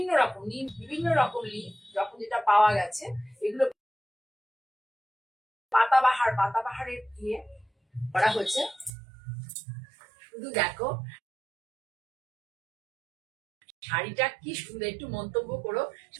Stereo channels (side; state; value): left; drops out; at 8.9 s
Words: রকম নিম, বিভিন্ন রকম লিফ যখন যেটা পাওয়া গেছে, এগুলো পাতাবাহারের দিয়ে করা হচ্ছে। শুধু দেখো শাড়িটা কি সুন্দর, একটু মন্তব্য করো।